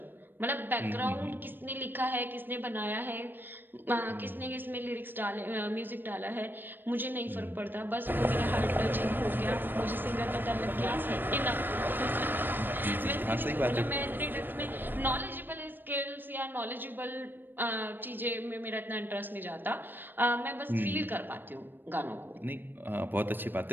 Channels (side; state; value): left; late; 0.094 ms